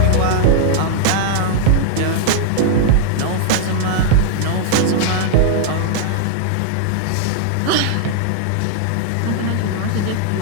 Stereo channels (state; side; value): different; both; correlation -0.01